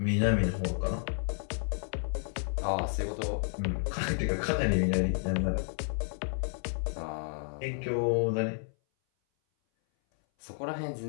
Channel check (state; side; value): silent; right; 57 dB below the other